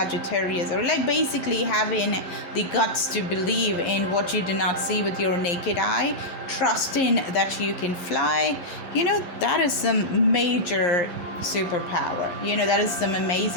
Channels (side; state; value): right; late; 11 ms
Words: or like basically having the guts to believe in what you do not see with your naked eye, trusting that you can fly, that is some major superpower. That is some